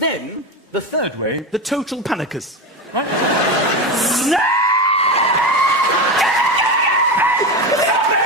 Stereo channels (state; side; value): normal; both; correlation 0.19